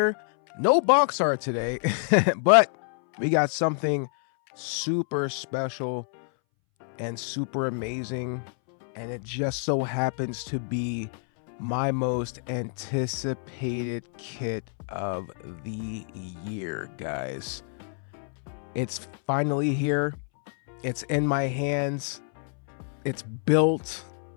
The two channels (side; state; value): right; silent; 60 dB below the other